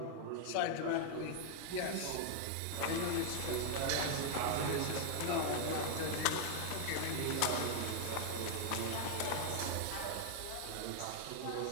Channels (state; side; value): different; both; correlation 0.00